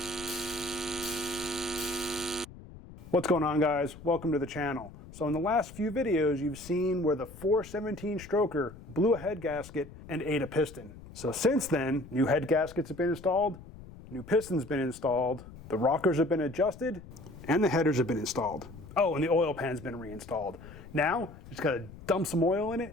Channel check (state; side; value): noise; left; rumble, 17 dB below the sound